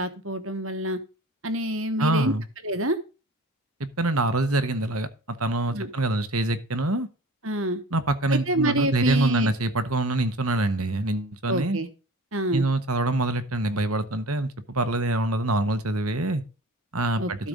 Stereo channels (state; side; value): normal; both; correlation 0.42